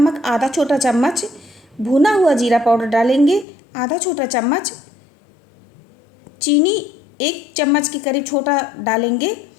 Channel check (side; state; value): right; drops out; at 3.5 s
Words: आधा छोटा चम्मच, भुना हुआ जीरा पाउडर डालेंगे आधा छोटा चम्मच, चीनी 1 चम्मच के करीब छोटा डालेंगे।